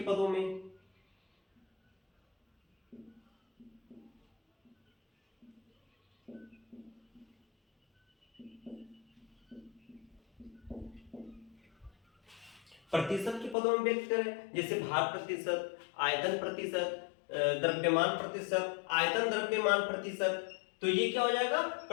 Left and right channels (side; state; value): right; drops out; at 13.6 s